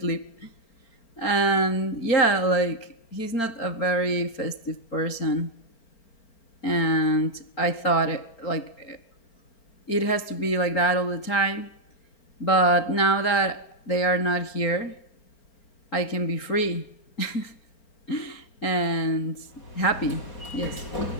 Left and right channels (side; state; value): right; late; 4.4 ms